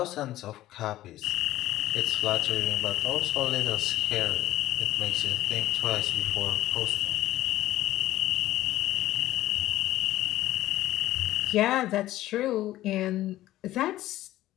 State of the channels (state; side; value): quieter; right; 14.9 dB